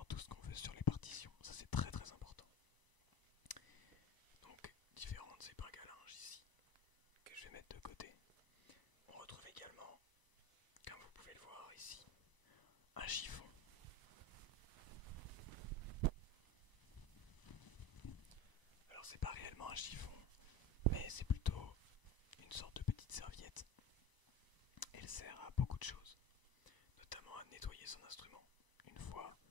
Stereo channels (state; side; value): late; right; 1.0 ms